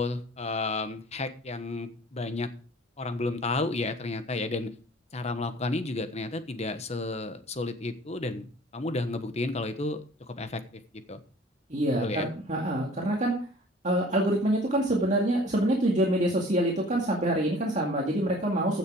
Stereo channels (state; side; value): normal; both; correlation 0.49